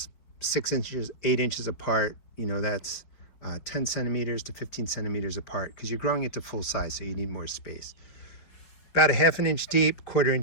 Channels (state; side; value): late; right; 4.9 ms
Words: 6 inches, 8 inches apart. That's 10 centimeters to 15 centimeters apart because you're growing it to full size, so you need more space. About 1/2 inch deep, 1/4